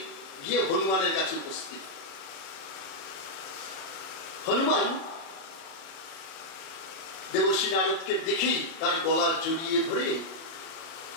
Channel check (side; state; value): right; late; 37 ms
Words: গিয়ে হনুমানের কাছে উপস্থিত। হনুমান দেবর্ষি নারদকে দেখেই তার গলা জড়িয়ে ধরে